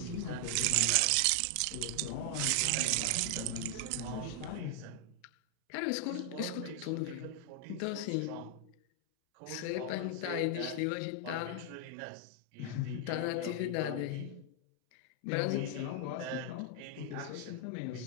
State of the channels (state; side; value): different; both; correlation 0.00